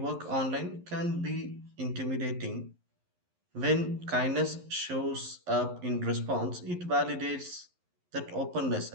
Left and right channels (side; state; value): left; late; 11 ms